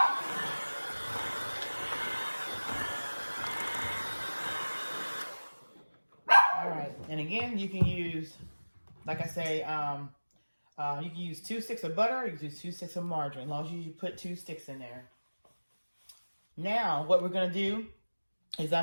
All right, and again, you can use, like I say, you can use 2 sticks of butter, or you can use 2 sticks of margarine, as long as you put 2 sticks in there. Now, what we're going to do is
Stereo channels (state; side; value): inverted; both; correlation -1.00